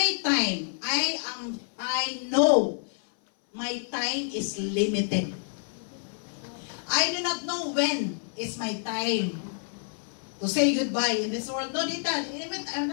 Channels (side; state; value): right; silent; 59 dB below the other